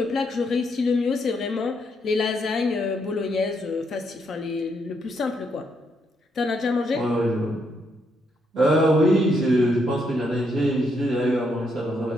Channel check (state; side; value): normal; both; correlation 0.76